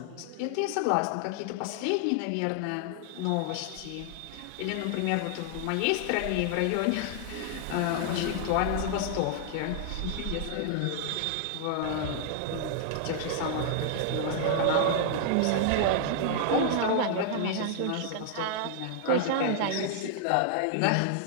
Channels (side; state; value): both; different; correlation -0.01